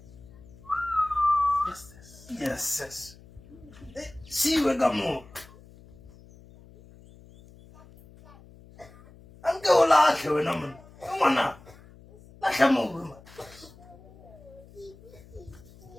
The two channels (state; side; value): noise; left; hum, 22 dB below the sound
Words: Yes. See we gamo. Anke ola ke wena mona. Ngwana. La hlamo ma.